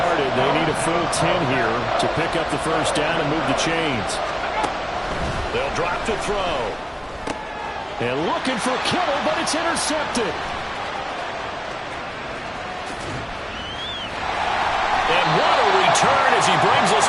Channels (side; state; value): both; identical; correlation 1.00